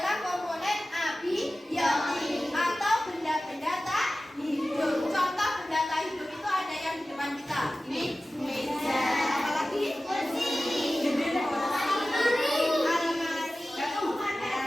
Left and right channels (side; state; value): both; normal; correlation 0.95